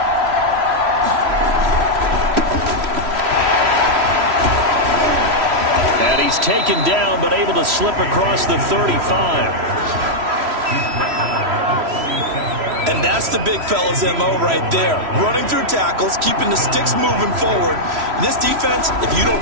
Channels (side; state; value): left; late; 3.1 ms